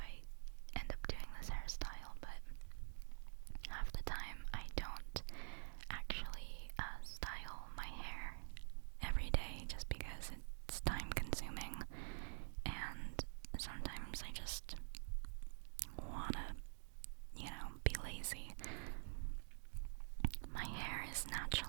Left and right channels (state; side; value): silent; left; digital silence